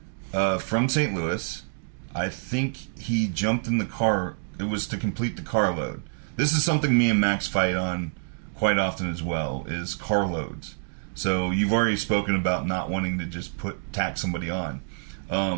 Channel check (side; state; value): left; silent; digital silence